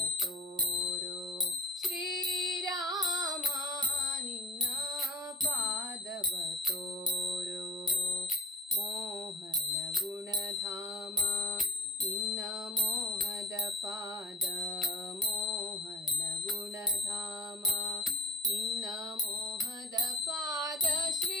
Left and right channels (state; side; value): normal; both; correlation 0.49